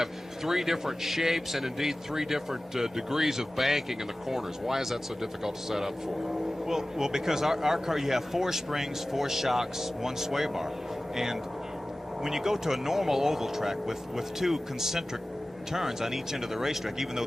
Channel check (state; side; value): normal; both; correlation 0.96